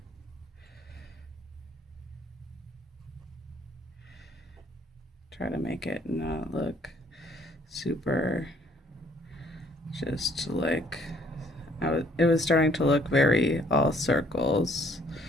Try to make it not look super just like it was starting to look very all circles.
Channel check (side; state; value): both; normal; correlation 0.62